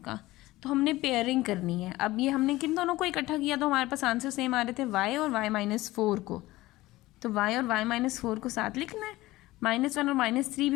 तो हमने पेयरिंग करनी है। अब ये हमने किन दोनों को इकट्ठा किया तो हमारे पास आंसर सेम आ रहे थे y और y-4 को, तो y और y-4 को साथ लिखना है। -1 और -3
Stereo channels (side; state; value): right; quieter; 18.1 dB